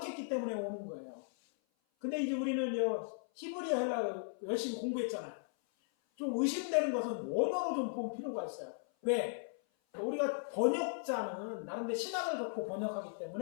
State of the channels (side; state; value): right; silent; 53 dB below the other